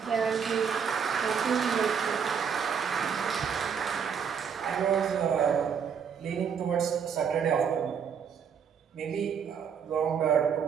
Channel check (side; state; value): left; quieter; 7.0 dB